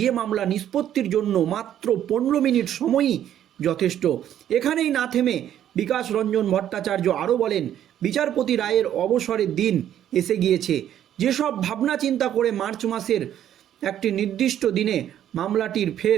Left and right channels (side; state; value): left; quieter; 10.9 dB